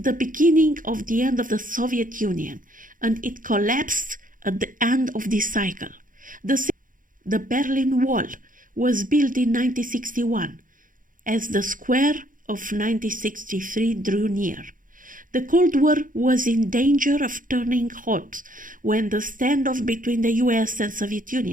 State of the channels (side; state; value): left; late; 0.39 ms